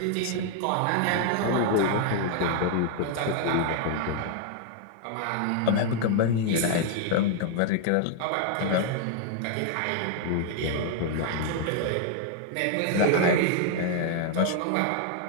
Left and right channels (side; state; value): both; different; correlation 0.00